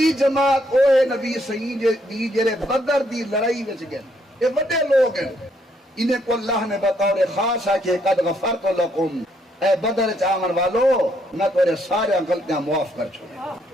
جماعت او ہے نبی سنگھ دی جڑے بدر دی لڑائی وچ گئے، یہ بڑے لوگ ہیں. انہیں کو اللہ نے بطور خاص ہے کہ قد غفرت لکم، اے بدر چاون والو میں تیرے سارے غلطیاں معاف کر چھوڑے.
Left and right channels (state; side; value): normal; both; correlation 0.72